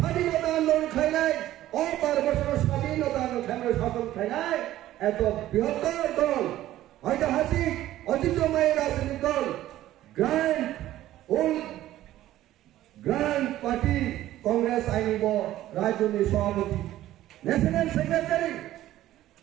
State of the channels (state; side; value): quieter; left; 14.1 dB